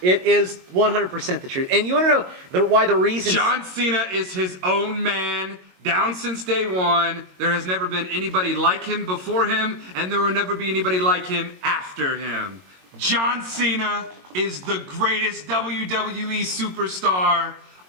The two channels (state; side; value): late; left; 22 ms